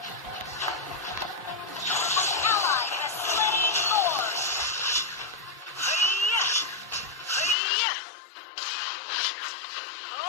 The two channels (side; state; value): right; drops out; at 7.6 s